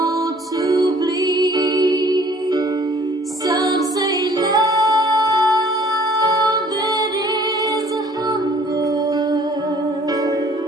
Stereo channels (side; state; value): both; normal; correlation 0.55